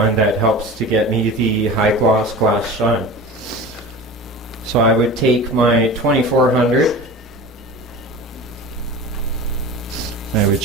that helps to get me the high gloss glass shine. So I would take my 2400, I would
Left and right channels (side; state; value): both; normal; correlation 0.34